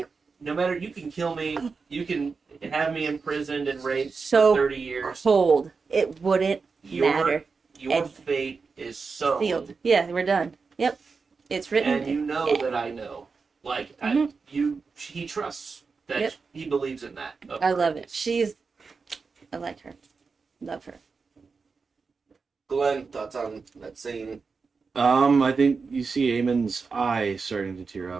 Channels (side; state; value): left; quieter; 4.8 dB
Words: no matter you can kill me, you can have me imprisoned and raped So for 30 years. cold, it wouldn't matter. Your And- fate is sealed. Sealed. Yeah, we're done. Yep, it's written. And you know Yeah. that I know. Like Mhm. he trusts that Yep. he believes in that. of I her. love it. I like her. Love her. Glenn, thoughts on that scene? I think you see Aemon's eye starting to tear